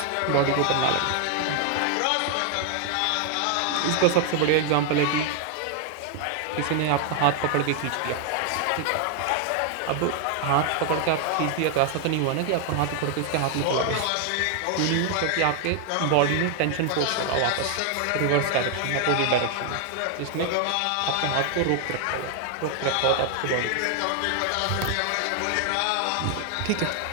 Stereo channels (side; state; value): both; different; correlation 0.00